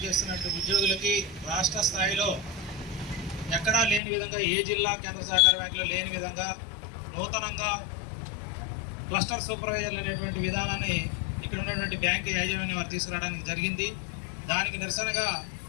ఉద్యోగులకి రాష్ట్ర స్థాయిలో ఎక్కడా లేని విధంగా, ఏ జిల్లా కేంద్ర సహకార బ్యాంకులో లేని విధంగా నూతనంగా క్లస్టర్ సూపర్వైజర్లు అనేటువంటి విధానాన్ని ఇక్కడ ఉన్నటువంటి బ్యాంకు యాజమాన్యం వారు తీసుకురావడానికి జరిగింది. దానికి నిరసనగా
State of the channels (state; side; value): drops out; right; at 4.0 s